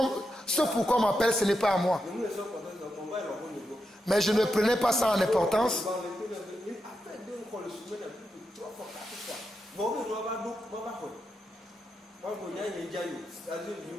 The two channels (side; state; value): both; normal; correlation 0.86